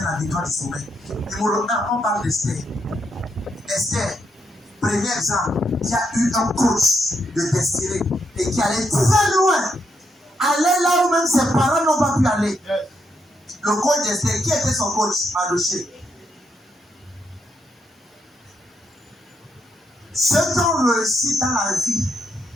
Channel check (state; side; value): normal; both; correlation 0.78